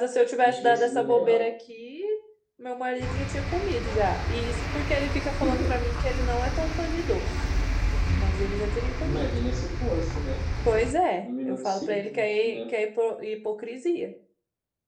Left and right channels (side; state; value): both; identical; correlation 1.00